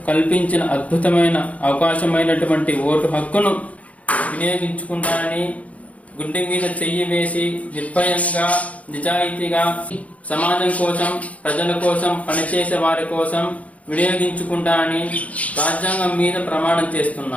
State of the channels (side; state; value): right; late; 0.067 ms